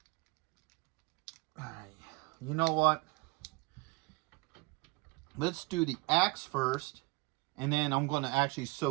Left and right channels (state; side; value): quieter; left; 24.5 dB